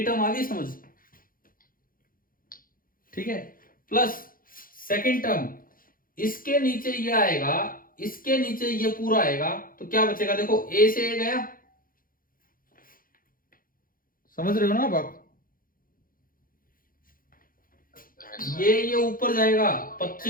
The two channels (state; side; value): late; right; 0.41 ms